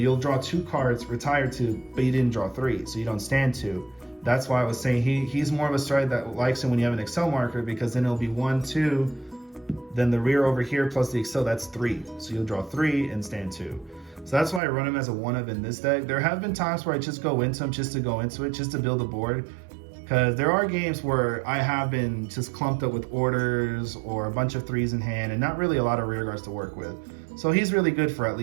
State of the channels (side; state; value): left; drops out; at 14.6 s